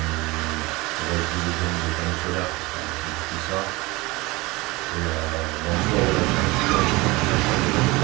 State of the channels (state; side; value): quieter; left; 22.7 dB